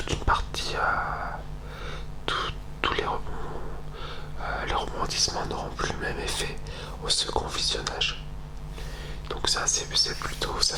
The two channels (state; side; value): identical; both; correlation 1.00